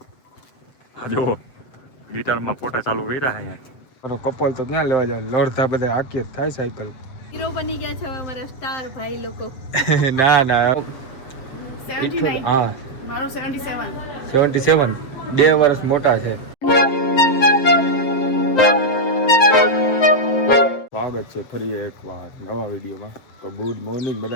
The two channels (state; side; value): late; right; 7.7 ms